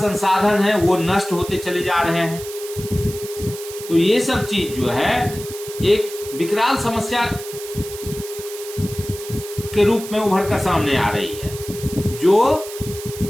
है वो नष्ट होते चले जा रहे हैं। तो ये सब चीज जो है एक विकराल समस्या के रूप में उभर कर सामने आ रही है, जो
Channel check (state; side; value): noise; right; hiss, 12 dB below the sound